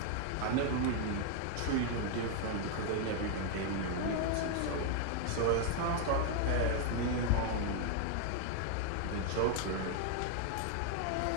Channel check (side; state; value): both; different; correlation 0.00